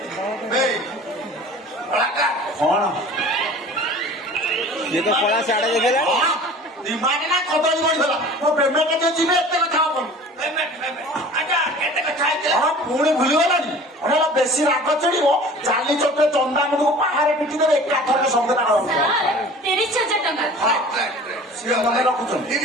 ଏଇ କଳାକାର କଣ ଇଏ ତ କଳା ସାଡେ ଦେଖେଇଲା ଦିମାଗ ନା କଦଳୀ ବଢିଗଲା ମୋ ପେମେଣ୍ଟ ଯୋଉ ଯିବେ ଏତେ କଥା ହବନି ପେମେଣ୍ଟ ଆଜ୍ଞା କେତେ କଥା ହେଇଥିଲା ହଁ ପୁଣି ଭୁଲିଗଲାନି ଅନେକ ବେଶୀ ରାଗ ଚଢିବ ଚାଲି ଚୋଟେ ଚନ୍ଦାମୁଣ୍ଡକୁ ପାହାରେ ପିଟି ଦେବେ ଏକାଥରକେ ସବୁ କଥା ହବ 30,000 ଟଙ୍କା ମନେ ରଖୁଛନ୍ତି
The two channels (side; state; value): both; normal; correlation 0.43